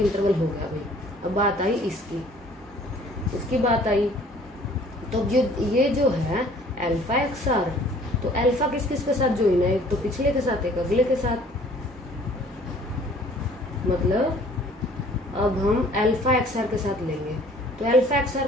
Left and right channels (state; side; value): normal; both; correlation 0.54